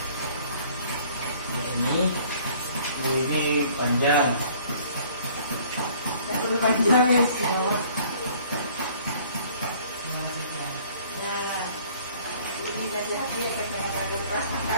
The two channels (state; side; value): inverted; both; correlation -0.55